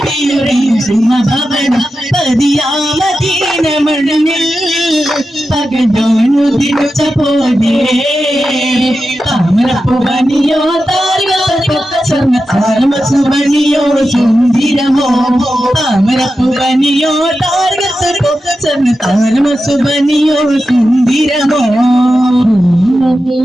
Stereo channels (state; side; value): normal; both; correlation 0.91